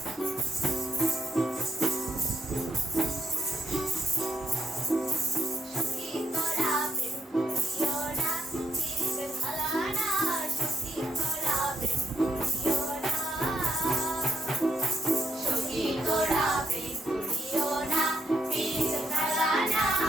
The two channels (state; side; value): normal; both; correlation 0.76